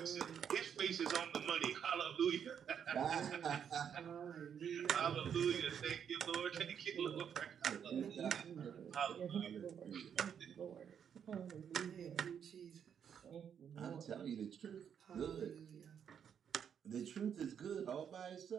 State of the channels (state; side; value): quieter; left; 8.1 dB